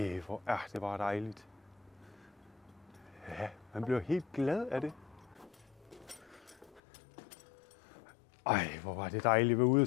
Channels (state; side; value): drops out; right; at 6.8 s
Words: Hvor er det bare dejligt. Ja, man bliver helt glad af det. Hvor var det dejligt at være ude